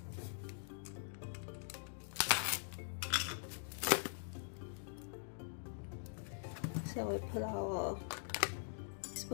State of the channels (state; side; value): silent; right; digital silence